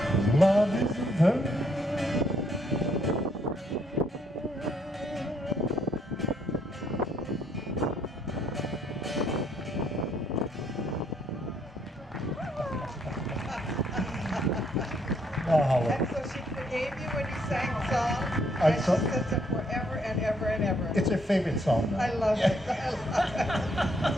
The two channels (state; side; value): normal; both; correlation 0.70